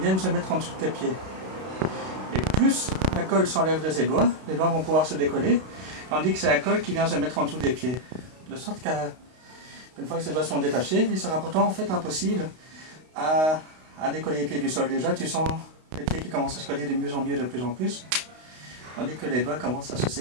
se mettre en dessous de tes pieds. Et plus la colle s'enlève de ses doigts, les doigts vont pouvoir se décoller, tandis que c'est la colle qui vient se mettre en dessous des pieds. De sorte qu'une fois que ces doigts sont détachés, il sera pourtant en fait impossible à décoller les pieds du sol. Déjà, tu sens les pieds qui commencent à se coller de mieux en mieux, de plus en plus, tandis que les doigts commencent à se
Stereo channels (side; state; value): left; late; 32 ms